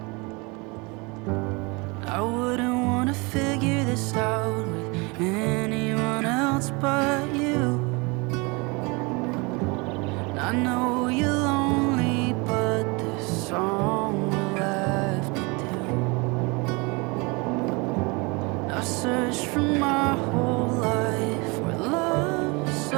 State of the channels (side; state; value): left; quieter; 28.1 dB